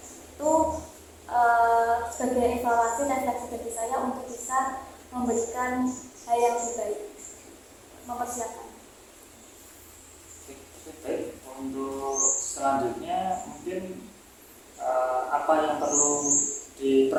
Itu sebagai evaluasi refleksi bagi saya untuk bisa memberikan hal yang lebih baik, mempersiapkan. Baik, untuk selanjutnya mungkin apa yang perlu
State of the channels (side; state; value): both; identical; correlation 1.00